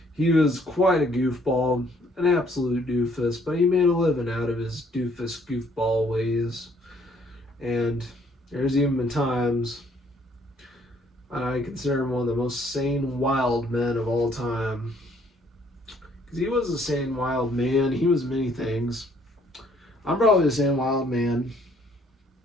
He was quite a goofball, an absolute doofus, but he made a living out of his doofus goofball ways. And there's even been times I consider him one of the most sane, wild men of all time. Because he was a sane, wild man. He was many things. I'm probably the same wild man.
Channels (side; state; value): both; normal; correlation 0.64